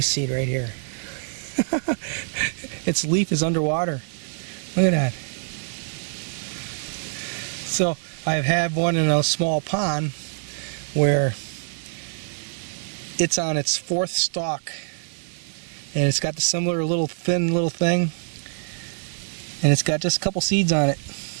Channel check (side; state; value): left; silent; 62 dB below the other